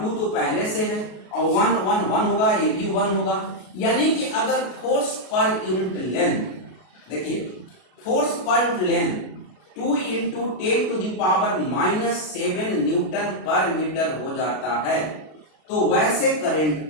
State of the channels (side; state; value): right; late; 33 ms